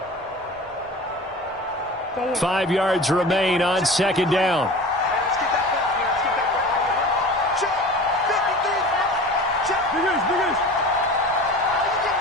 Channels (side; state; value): both; normal; correlation 0.37